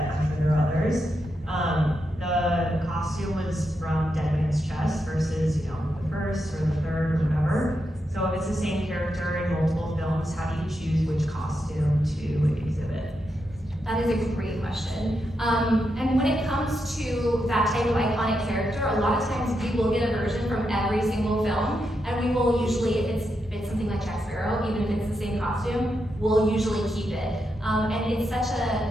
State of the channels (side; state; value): both; normal; correlation 0.84